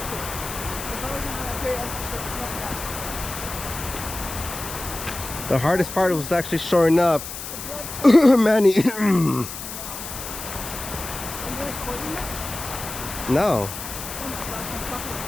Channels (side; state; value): left; noise; hiss, 9 dB below the sound